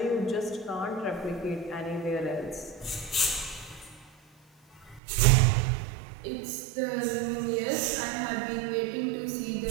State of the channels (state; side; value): drops out; left; at 5.0 s